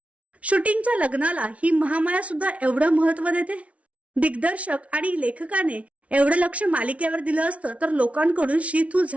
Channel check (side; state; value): left; late; 0.064 ms